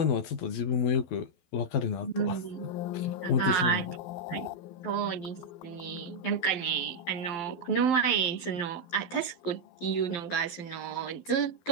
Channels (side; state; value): right; late; 12 ms